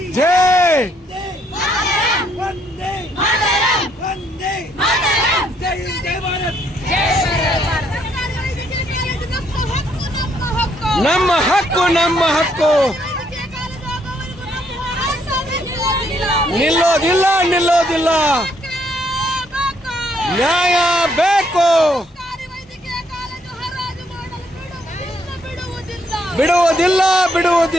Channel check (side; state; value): both; normal; correlation 0.71